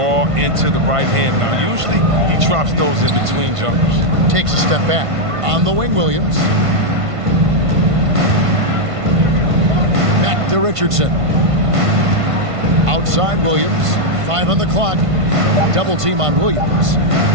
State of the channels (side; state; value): left; late; 1.5 ms